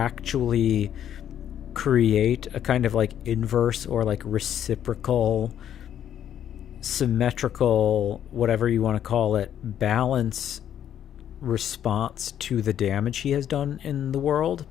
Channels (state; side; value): quieter; right; 10.1 dB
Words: create a kind of like inverse or like reciprocal, symmetrical, whatever you want to call it, balance response to the damage he has done in the world,